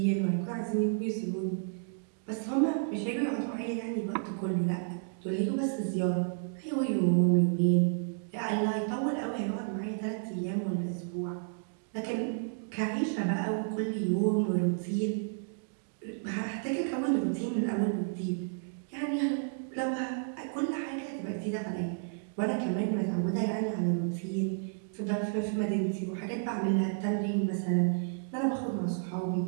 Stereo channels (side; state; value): left; silent; digital silence